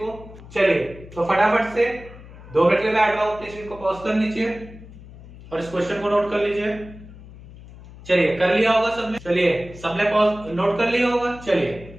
चलिए, तो फटाफट से 2 मिनट के लिए बैठ रहा हूं, प्लीज इनको पॉज कर लीजिए और इस क्वेश्चन को नोट कर लीजिए। चलिए, कर लिया होगा सबने? चलिए, सबने पॉज नोट कर लिया होगा।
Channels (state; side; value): noise; left; hum, 18 dB below the sound